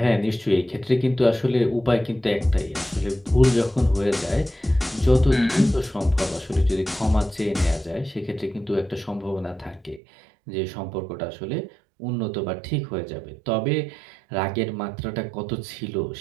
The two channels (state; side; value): drops out; left; at 10.0 s